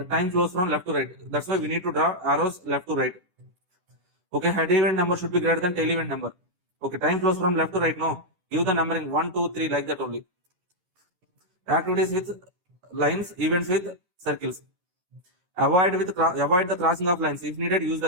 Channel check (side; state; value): left; late; 11 ms